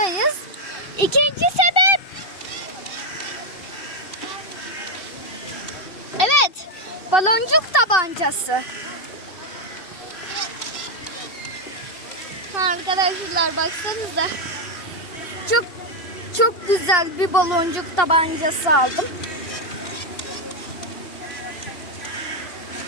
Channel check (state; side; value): late; right; 2.7 ms